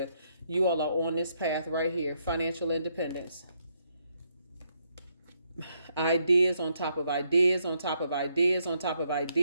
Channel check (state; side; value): inverted; both; correlation -0.75